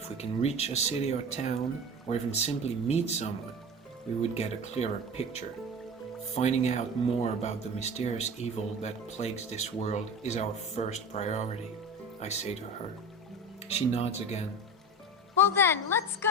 we can reach a city or town, or even simply meet someone, we would get a clearer picture. Finding out more about the mysterious evil that plagues this world is our first priority, I say to her. She nods again. Well then, let's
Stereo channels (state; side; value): normal; both; correlation 0.31